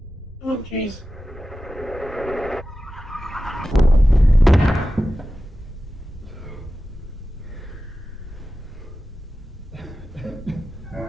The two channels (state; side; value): normal; both; correlation 0.94